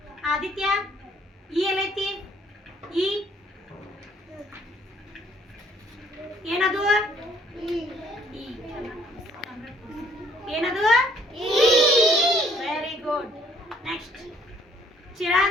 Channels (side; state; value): both; normal; correlation 0.62